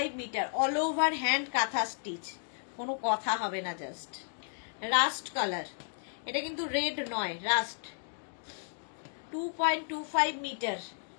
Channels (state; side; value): silent; right; digital silence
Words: metre, all over hand kantha stitch, কোনো কথা হবে না। জাস্ট রাস্ট কালার, এটা কিন্তু রেড নয়, রাস্ট। 2.25 মিটার